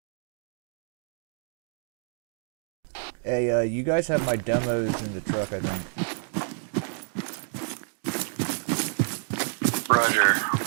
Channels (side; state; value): left; silent; digital silence